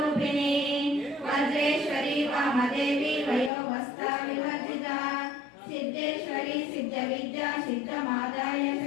वज्रेश्वरी वामदेवी वयोवस्था विवर्जिता सिद्धेश्वरी सिद्धविद्या सिद्धमाता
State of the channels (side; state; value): right; drops out; at 3.5 s